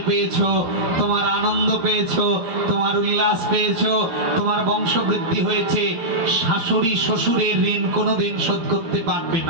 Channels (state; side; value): late; left; 12 ms